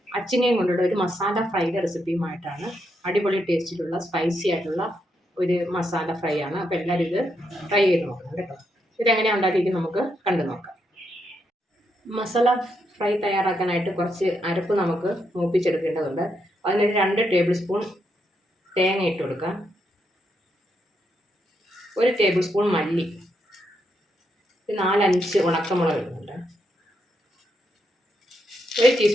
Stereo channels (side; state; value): both; normal; correlation 0.80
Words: അച്ചിങ്ങയും കൊണ്ടുള്ള ഒരു മസാല ഫ്രൈയുടെ റെസിപ്പിയുമായിട്ടാണ്. അടിപൊളി ടേസ്റ്റിലുള്ള സ്പൈസി ആയിട്ടുള്ള ഒരു മസാല ഫ്രൈ ആണ്. അപ്പോൾ എല്ലാവരും ഇത് ട്രൈ ചെയ്ത് നോക്കണം കേട്ടോ. ഇതെങ്ങനെയാണ് ഉണ്ടാക്കിയിരിക്കുന്നത് നമുക്ക് കണ്ടു നോക്കാം. മസാല ഫ്രൈ തയ്യാറാക്കാനായിട്ട് കുറച്ച് അരപ്പ് നമുക്ക് മൂപ്പിച്ചെടുക്കേണ്ടതുണ്ട്. അതിനൊരു 2 ടേബിൾ സ്പൂൺ തേങ്ങ ഇട്ട് കൊടുക്കാം, 1 ടേബിൾ സ്പൂൺ മല്ലി, 4-5 ഉണക്കമുളക് ഇടുന്നുണ്ട്, 1